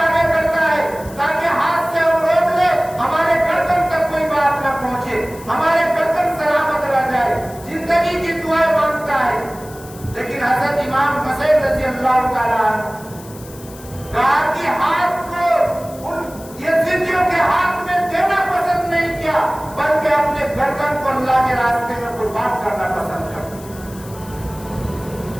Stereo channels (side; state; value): left; noise; hiss, 19 dB below the sound